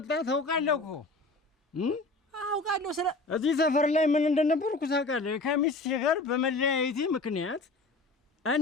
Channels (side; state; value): right; quieter; 3.3 dB